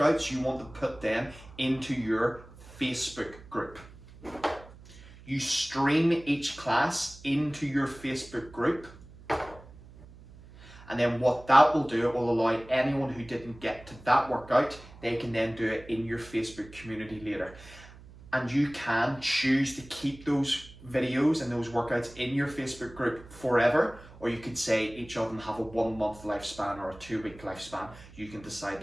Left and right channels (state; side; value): noise; right; hum, 20 dB below the sound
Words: you want to put them into your Facebook group. You stream each class into your Facebook group. And then what that will do, it will allow anyone who didn't get to that workout, they can then do it in your Facebook community later. And you can choose to keep those videos and those workouts in your Facebook group forever, or you could say each of them have a 1 month lifespan or a 2 week lifespan. You can decide